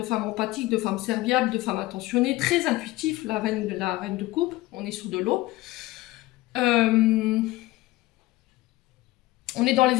femmes empathiques, de femmes serviables, de femmes attentionnées, très intuitifs, la reine de coupe, on est sur de l'eau. On est dans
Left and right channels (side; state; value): right; quieter; 18.7 dB